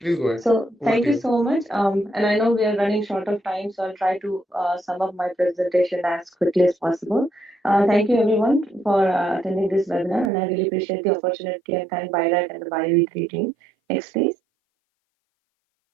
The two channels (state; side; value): drops out; left; at 10.3 s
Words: go ahead. So Over thank to you you. so much. And I know we are running short of time, so I'll try to sum up my presentation as quickly as possible. Thank you everyone for attending this webinar, and I really appreciate the opportunity and thank BIRAC and the BioE3 team. Next, please.